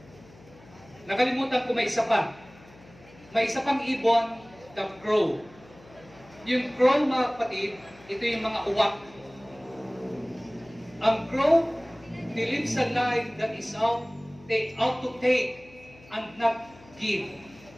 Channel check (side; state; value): left; noise; hum, 24 dB below the sound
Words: Nakalimutan ko may isa pa. May isa pang ibon, the crow. Yung crow, mga kapatid, ito yung mga uwak. Ang crow, they lives a life that is out to take and not give.